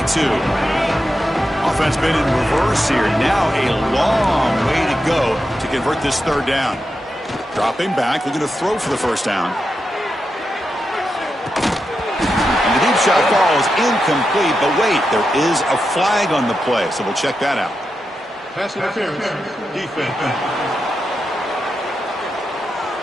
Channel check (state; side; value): normal; both; correlation 0.88